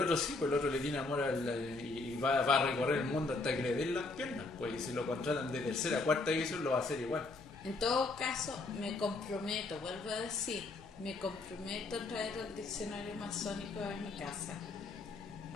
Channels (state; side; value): quieter; right; 3.5 dB